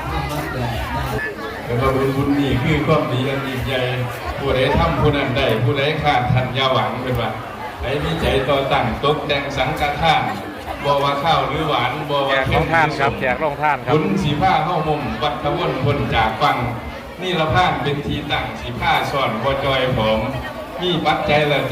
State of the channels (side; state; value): both; identical; correlation 1.00